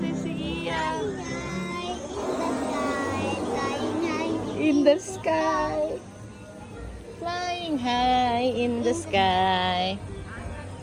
Iya. In the sky. Flying high in the sky.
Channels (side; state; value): both; identical; correlation 1.00